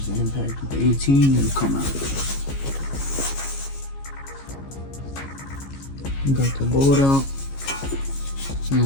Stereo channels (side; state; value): right; late; 15 ms